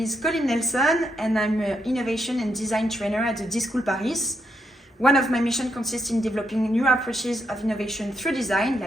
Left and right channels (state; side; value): normal; both; correlation 0.79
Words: Coline Nelson and I'm an innovation and design trainer at the d.school Paris. One of my missions consists in developing new approaches of innovation through design,